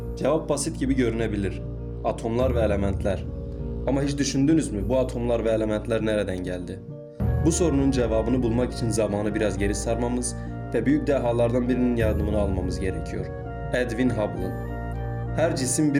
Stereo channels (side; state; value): both; identical; correlation 1.00